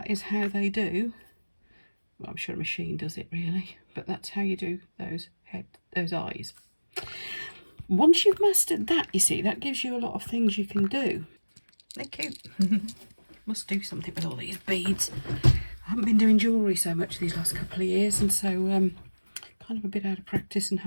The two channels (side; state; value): both; inverted; correlation -1.00